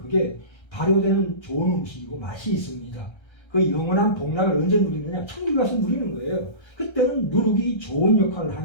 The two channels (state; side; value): late; right; 1.3 ms